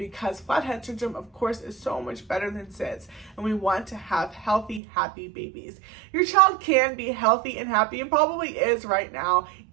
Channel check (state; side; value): drops out; left; at 4.8 s